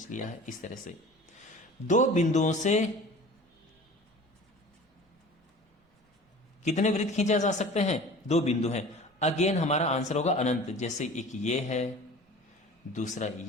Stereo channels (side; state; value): both; normal; correlation 0.41